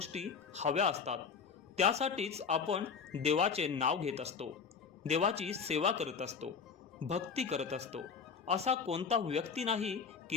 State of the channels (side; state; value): right; quieter; 6.0 dB